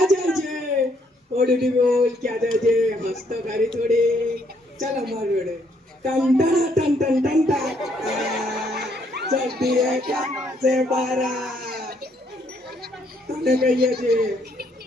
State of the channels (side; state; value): both; normal; correlation 0.70